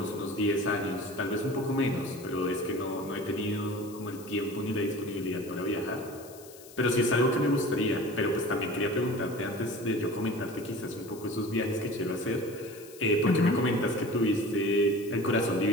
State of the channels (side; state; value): left; noise; hiss, 20 dB below the sound